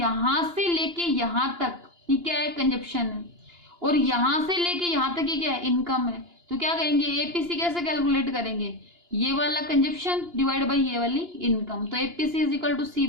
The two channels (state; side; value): late; left; 2.9 ms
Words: से लेके यहाँ तक ये क्या है, कंजप्शन है, और यहाँ से लेके यहाँ तक ये क्या है, इनकम है। तो क्या कहेंगे, एपीसी कैसे कैलकुलेट करेंगे, ये वाला कंजप्शन डिवाइड बाई ये वाली इनकम। तो APC is equal to C